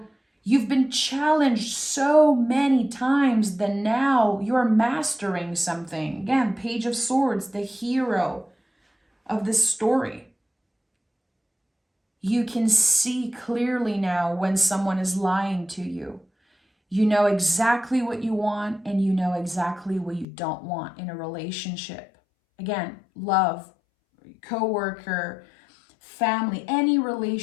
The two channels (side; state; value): right; drops out; at 20.2 s